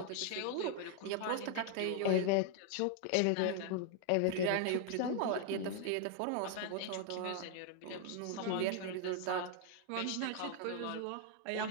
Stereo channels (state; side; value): different; both; correlation 0.00